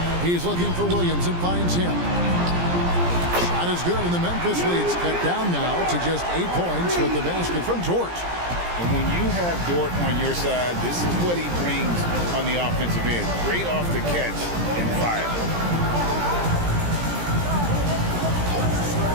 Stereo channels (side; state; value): left; late; 17 ms